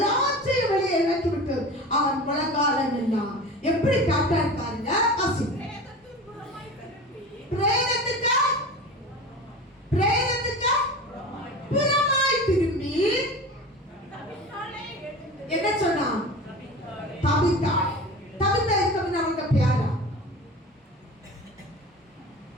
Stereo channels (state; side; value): normal; both; correlation 0.33